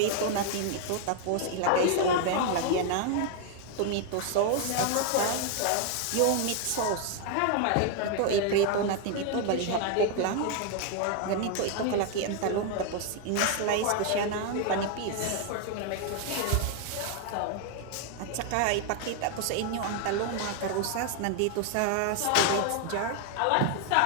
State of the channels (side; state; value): both; different; correlation 0.00